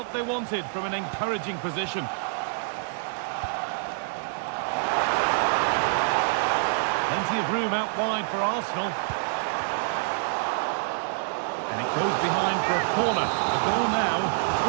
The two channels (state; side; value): silent; left; digital silence